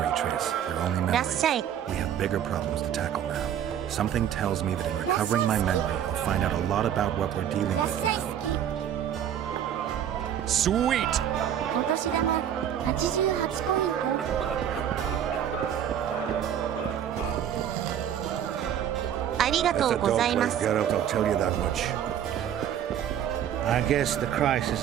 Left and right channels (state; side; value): quieter; left; 9.8 dB